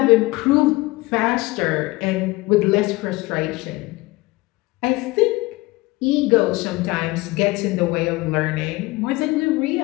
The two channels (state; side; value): quieter; right; 21.4 dB